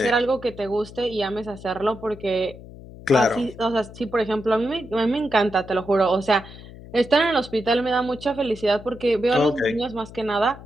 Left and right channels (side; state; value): left; noise; hum, 17 dB below the sound